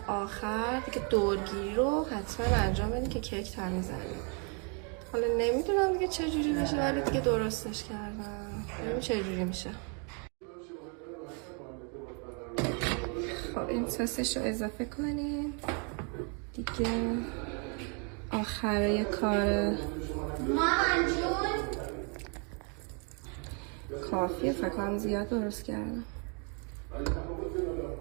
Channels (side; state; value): left; quieter; 37.4 dB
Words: آخر دیگه دورگیری رو حتما انجام بدین که کیک تمیز بشه. حالا نمیدونم دیگه چجوری بشه ولی دیگه درستش کردم، ببینیم چجوری میشه. خب این سسش رو اضافه کنین دیگه. آخره کار کافیه، فکر کنم زیاد درست کردم.